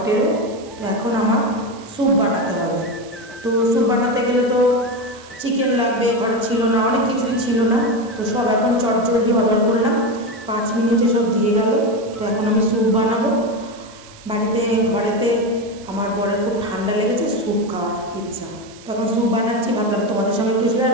তো এখন আমার স্যুপ বানাতে হবে। তো স্যুপ বানাতে গেলে তো চিকেন লাগবে, ঘরে ছিল না, অনেক কিছুই ছিল না। তো সব এখন চটজলদি অর্ডার করলাম, 5 মিনিটে সব দিয়ে গেল। তো এখন আমি স্যুপ বানাবো বাড়িতে। ঘরেতে আমার বরের খুব ঠান্ডা লেগেছে, স্যুপ খাওয়ার ইচ্ছা। তো এখন স্যুপ বানাচ্ছি, ভাবলাম তোমাদের সঙ্গে একটু শেয়ার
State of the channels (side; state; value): right; noise; hiss, 22 dB below the sound